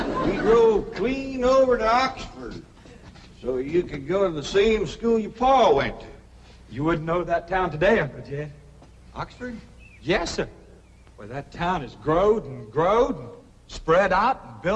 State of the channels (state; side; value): identical; both; correlation 1.00